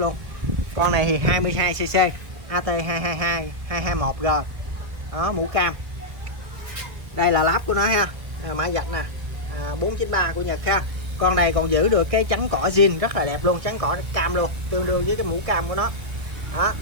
Con này thì 22cc AT222 221G đó, mũ cam. Đây là láp của nó ha, mã vạch nè, 493 của Nhật ha. Con này còn giữ được cái chắn cỏ zin rất là đẹp luôn, chắn cỏ cam luôn, tương đương với cái mũ cam của nó đó.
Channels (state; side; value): late; left; 1.9 ms